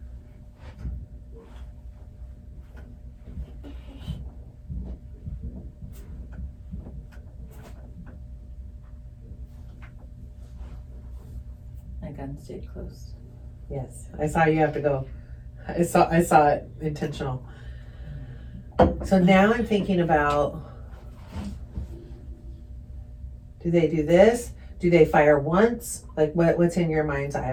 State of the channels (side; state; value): both; identical; correlation 1.00